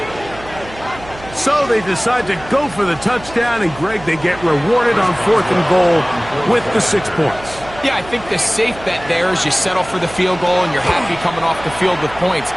So they decide to go for the touchdown, and Greg, they get rewarded on 4th and goal with the 6 points. Yeah, I think the safe bet there is you settle for the field goal and you're happy coming off the field with points.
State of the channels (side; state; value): right; noise; hum, 17 dB below the sound